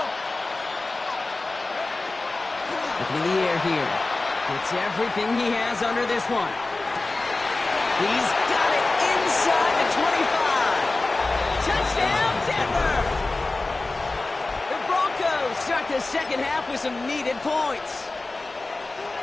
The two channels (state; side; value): quieter; right; 3.2 dB